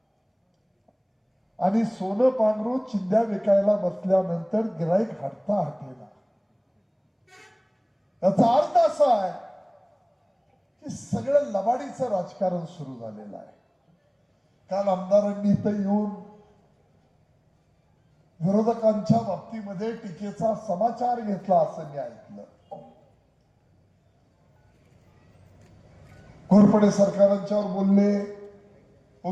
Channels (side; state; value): both; identical; correlation 1.00